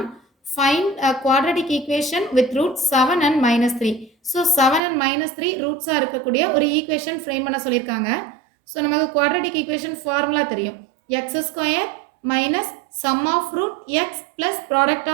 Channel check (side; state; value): left; drops out; at 4.8 s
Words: find a quadratic equation with root 7 and -3. So 7 and -3 ரூட்ஸாக இருக்கக்கூடிய ஒரு ஈக்குவேஷன் ஃப்ரேம் பண்ண சொல்லியிருக்காங்க. ஸோ நமக்கு குவாட்ரடிக் ஈக்குவேஷன் ஃபார்முலா தெரியும். X square minus sum of root x plus product